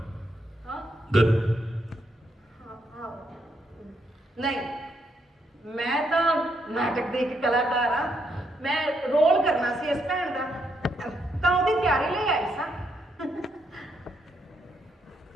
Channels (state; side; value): normal; both; correlation 0.77